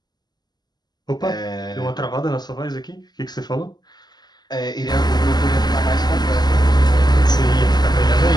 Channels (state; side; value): late; right; 0.20 ms